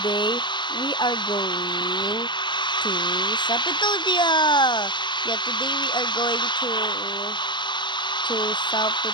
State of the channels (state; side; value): late; right; 0.22 ms